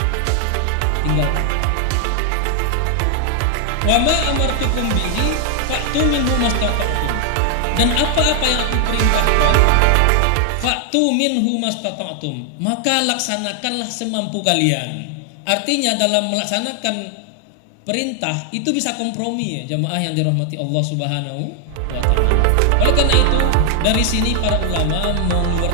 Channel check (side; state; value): both; different; correlation 0.00